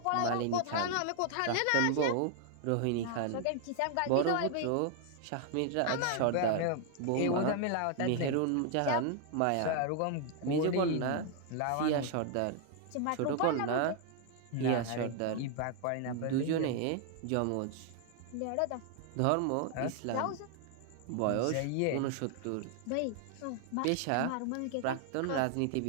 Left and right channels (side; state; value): both; different; correlation 0.00